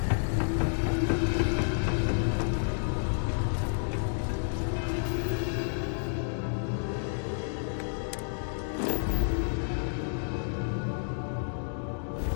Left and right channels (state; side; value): silent; right; digital silence